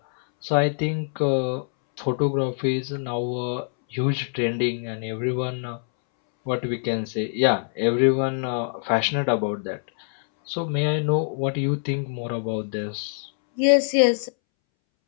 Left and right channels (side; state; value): right; silent; 62 dB below the other